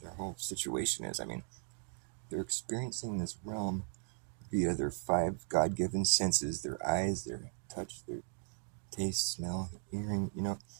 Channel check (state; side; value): silent; left; 53 dB below the other